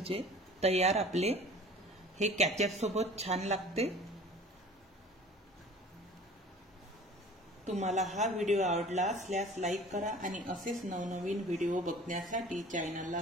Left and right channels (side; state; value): both; normal; correlation 0.45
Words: तयार आपले। हे कॅचअप सोबत छान लागते। तुम्हाला हा व्हिडिओ आवडला असल्यास लाईक करा आणि असेच नवनवीन व्हिडिओ बघण्यासाठी चॅनलला